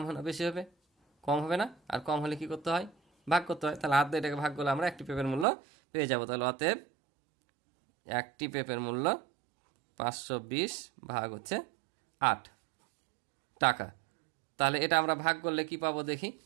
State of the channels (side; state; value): left; drops out; at 5.5 s